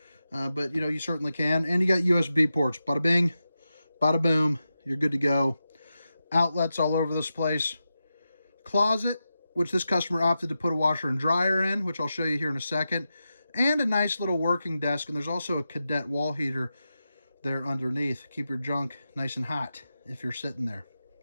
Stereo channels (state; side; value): inverted; both; correlation -0.90